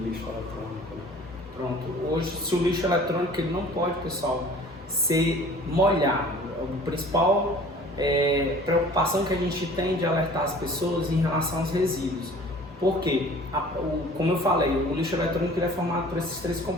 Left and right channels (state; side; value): normal; both; correlation 0.48